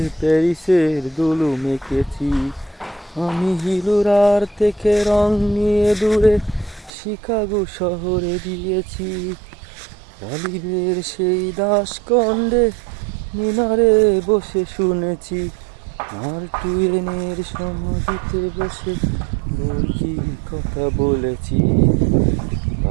প্যারিসের দুলু মেখেছি। আমি হিলুরার থেকে রং নিয়ে দূরে শিকাগো শহরে দিয়েছি। গালিবের সেই দাসকন্ডে মিনারে বসে শুনেছি। মার্ক টুয়েনের সমাধিতে বসে মুরগির কথা বলেছি।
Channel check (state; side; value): drops out; left; at 6.9 s